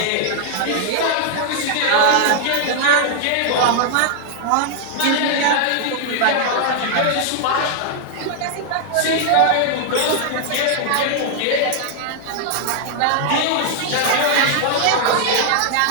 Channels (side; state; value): both; different; correlation 0.00